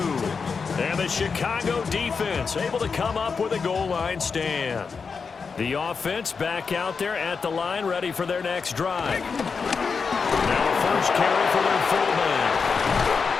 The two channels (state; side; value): quieter; right; 5.3 dB